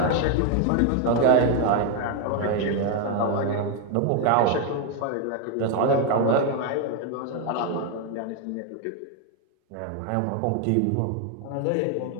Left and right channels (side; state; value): both; different; correlation 0.01